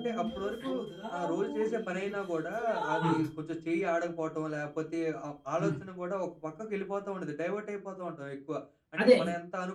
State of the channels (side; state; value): both; identical; correlation 1.00